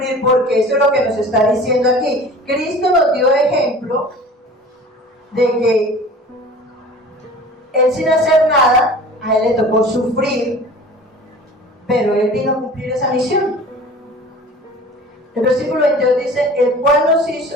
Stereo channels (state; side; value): normal; both; correlation 0.42